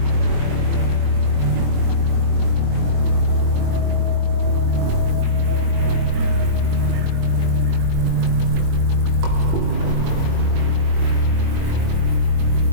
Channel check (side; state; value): left; late; 21 ms